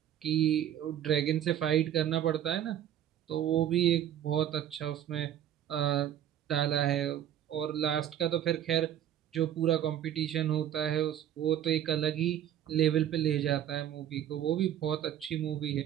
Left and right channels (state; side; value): quieter; left; 10.8 dB